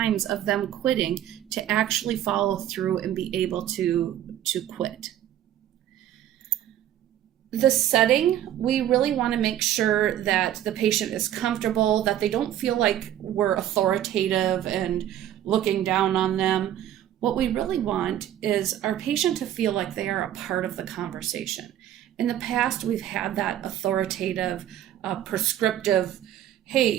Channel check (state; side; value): quieter; left; 11.6 dB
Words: of them quitting to actually follow through and be able to quit. The setting, we really want to make sure that the patient is comfortable, that they don't feel like we're authoritative and looking down on them. What we really want is our patient to feel like they are a part of the conversation. In the past, we've had that authoritative, prescriptive,